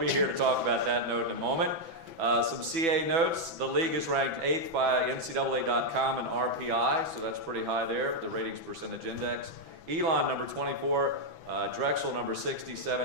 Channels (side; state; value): left; late; 6.0 ms